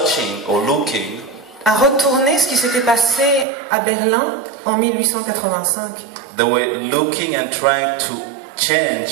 or looking à retourner ce qui s'était passé à Berlin en 1885. They were looking and trying to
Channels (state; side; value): drops out; left; at 3.5 s